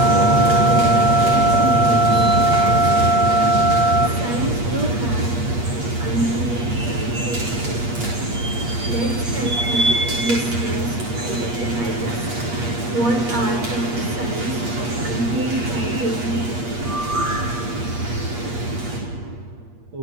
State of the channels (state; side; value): late; left; 8.4 ms